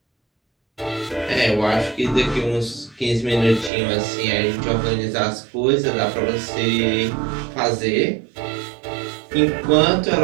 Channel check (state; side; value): drops out; left; at 3.7 s